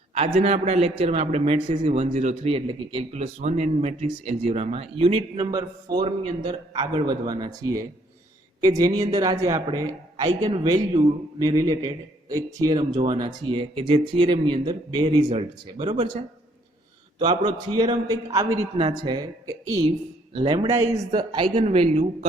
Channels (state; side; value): normal; both; correlation 0.65